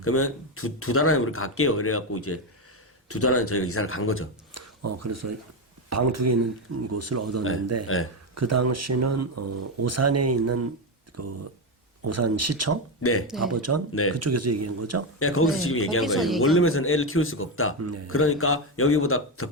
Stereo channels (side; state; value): both; normal; correlation 0.10